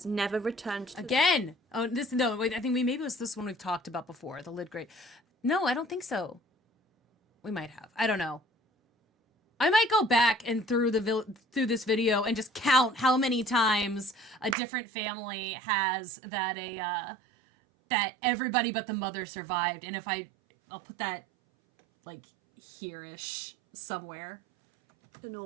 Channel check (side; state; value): left; drops out; at 14.6 s